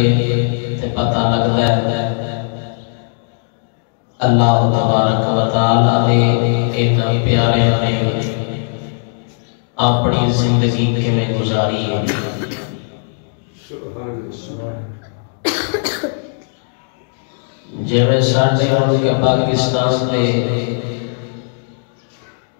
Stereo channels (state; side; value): silent; right; digital silence